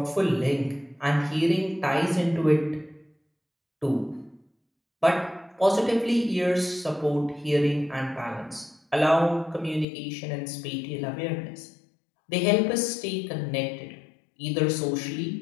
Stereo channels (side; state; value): right; drops out; at 9.9 s